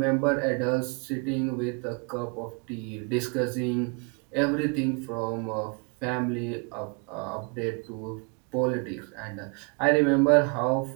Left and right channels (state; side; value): quieter; left; 35.0 dB